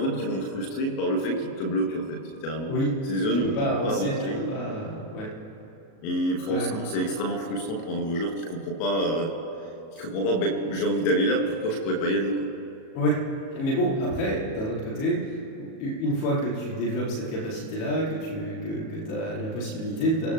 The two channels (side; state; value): right; late; 37 ms